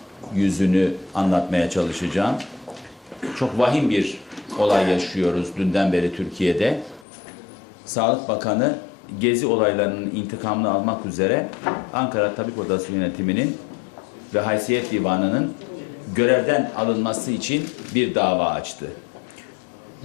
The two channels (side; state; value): right; drops out; at 7.1 s